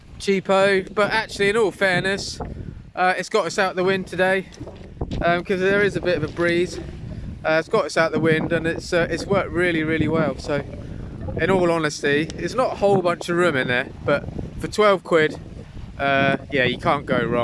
cheapo, but actually, in all fairness, it's got us out the wind today because there is a bit of a breeze. It's got us out the wind and it's worked really well. So in all honesty, it's not a whole bunch of room in there, but for 12 quid, yeah, you can't go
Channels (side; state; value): both; identical; correlation 1.00